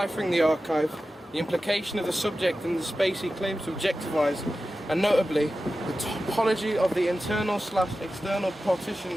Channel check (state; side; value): normal; both; correlation 0.93